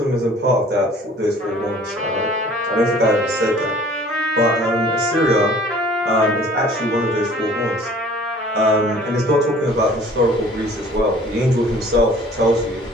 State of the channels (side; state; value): both; normal; correlation 0.51